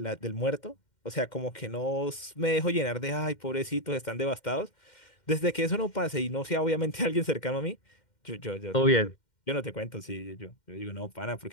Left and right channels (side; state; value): right; late; 2.1 ms